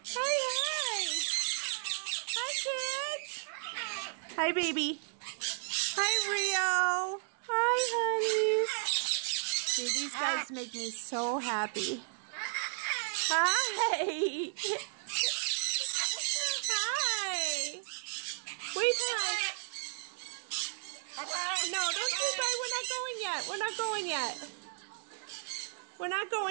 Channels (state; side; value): silent; left; digital silence